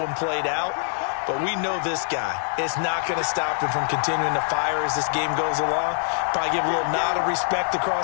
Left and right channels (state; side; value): silent; right; digital silence